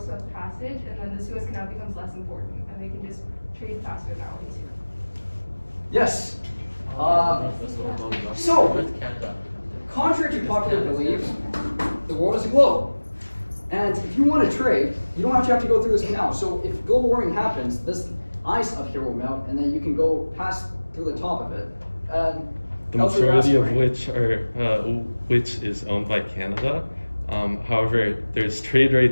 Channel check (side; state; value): both; inverted; correlation -1.00